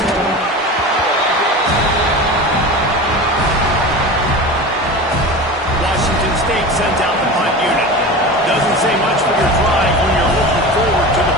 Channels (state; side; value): normal; both; correlation 0.31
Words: Washington State sends out the punt unit. Doesn't say much for your drive when you're looking forward to the